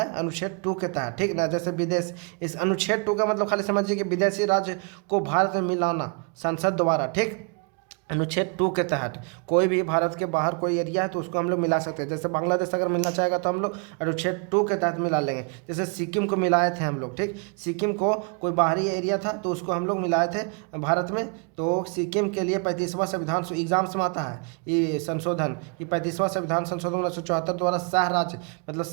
अनुच्छेद 2 के तहत, ठीक ना। जैसे विदेश, इस अनुच्छेद 2 का मतलब खाली समझिए कि विदेशी राज्य को भारत में मिलाना संसद द्वारा, ठीक। अनुच्छेद 2 के तहत कोई भी भारत के बाहर कोई एरिया है तो उसको हम लोग मिला सकते हैं। जैसे बांग्लादेश अगर मिलना चाहेगा तो हम लोग अनुच्छेद 2 के तहत मिला लेंगे। जैसे सिक्किम को मिलाए थे हम लोग, ठीक। सिक्किम को कोई बाहरी एरिया था तो उसको हम लोग मिलाए थे भारत में। तो सिक्किम के लिए 35वां संविधान एग्जाम्स में आता है ये संशोधन कि 35वां संविधान संशोधन 1974 द्वारा सह राज्य, मतलब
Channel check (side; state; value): left; quieter; 36.6 dB